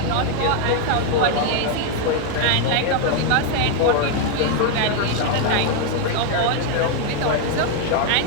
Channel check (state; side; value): different; both; correlation 0.01